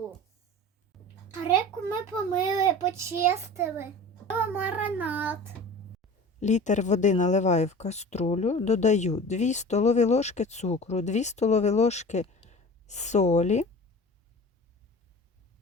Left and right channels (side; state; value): both; normal; correlation 0.38